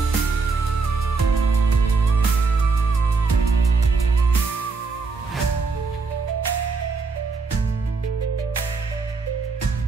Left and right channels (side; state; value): left; quieter; 4.4 dB